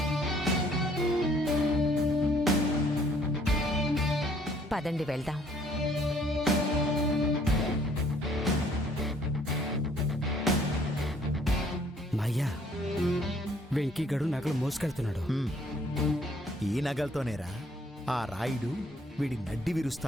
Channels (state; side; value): normal; both; correlation 0.62